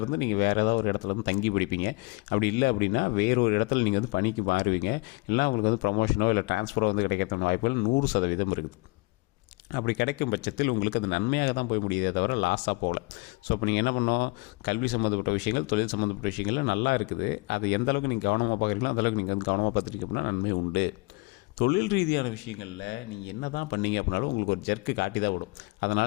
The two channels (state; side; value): quieter; right; 25.2 dB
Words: இருந்து நீங்கள் வேறு ஏதாவது ஒரு இடத்துல இருந்து தங்கி படிப்பீங்க. அப்படி இல்லை அப்படின்னா வேறொரு இடத்துல நீங்கள் வந்து பணிக்கு மாறுவீங்க. இல்லை உங்களுக்கு வந்து ப்ரமோஷனோ இல்லை ட்ரான்ஸ்ஃபரோ வந்து கிடைக்கிறதுக்கான வாய்ப்புகள் 100% இருக்குது. அப்படி கிடைக்கும் பட்சத்தில் உங்களுக்கு அது நன்மையாக தான் போய் முடியுதே தவிர லாஸாக போகல. ஸோ இப்போ நீங்கள் என்ன பண்ணோம், கல்வி சம்மந்தப்பட்ட விஷயங்கள், தொழில் சம்மந்தப்பட்ட விஷயங்கள் நல்லா இருக்குது. அது எந்த அளவுக்கு நீங்கள் கவனமாக பார்க்குறீங்களோ அந்தளவுக்கு நீங்கள் வந்து கவனமாக பார்த்துட்டீங்க அப்படின்னா நன்மை உண்டு. தொழில் ரீதியான விஷயங்களில் நீங்கள் என்ன தான் பண்ணீங்க அப்படின்னாலும் உங்களுக்கு ஒரு ஜர்க்கு காட்டி தான் விடும்.